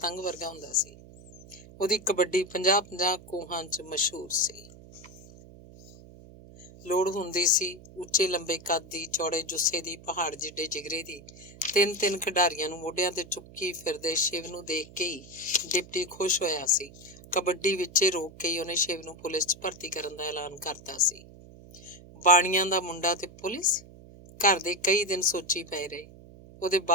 ਵਰਗਾ ਹੁੰਦਾ ਸੀ। ਉਹਦੀ ਕਬੱਡੀ 50-50 ਕੋਹਾਂ 'ਚ ਮਸ਼ਹੂਰ ਸੀ। ਲੋੜ ਹੁੰਦੀ ਸੀ ਉੱਚੇ ਲੰਬੇ ਕੱਦ ਦੀ, ਚੌੜੇ ਜੁੱਸੇ ਦੀ, ਪਹਾੜ ਜਿੱਡੇ ਜਿਗਰੇ ਦੀ। ਤਿੰਨ ਖਿਡਾਰੀਆਂ ਨੂੰ ਮੋਢਿਆਂ ਤੇ ਚੁੱਕੀ ਫਿਰਦੇ ਸ਼ਿਵ ਨੂੰ ਦੇਖ ਕੇ ਹੀ ਡਿਪਟੀ ਖੁਸ਼ ਹੋਇਆ ਸੀ। ਕਬੱਡੀ ਵਿੱਚੇ ਰੋਕ ਕੇ ਹੀ ਉਹਨੇ ਸ਼ਿਵ ਨੂੰ ਪੁਲਿਸ 'ਚ ਭਰਤੀ ਕਰਨ ਦਾ ਐਲਾਨ ਕਰਤਾ ਸੀ। ਬਾਣੀਆਂ ਦਾ ਮੁੰਡਾ ਤੇ ਪੁਲਿਸ, ਘਰ ਦੇ ਕਈ ਦਿਨ ਸੋਚੀ ਪਏ ਰਹੇ। ਉਹਦੇ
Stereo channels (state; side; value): noise; right; hum, 20 dB below the sound